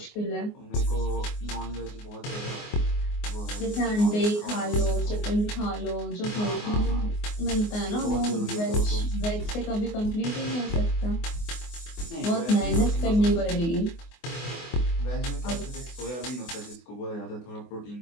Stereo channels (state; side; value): late; right; 24 ms